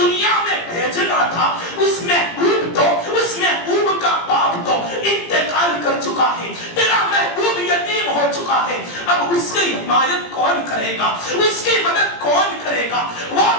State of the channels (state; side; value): late; right; 17 ms